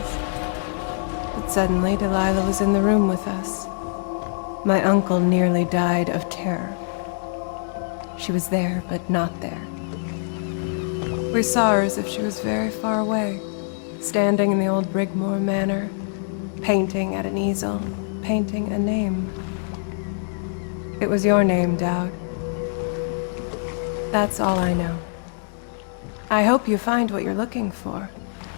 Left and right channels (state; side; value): silent; right; 63 dB below the other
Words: But suddenly Delilah was in the room with us. My uncle nearly died of terror. She was there, but not there. We saw her as if she was very far away, standing in the old Brigmore Manor, painting at an easel, painting a name. It was your name, Daud. That's all I know. I hope you find what you're looking for.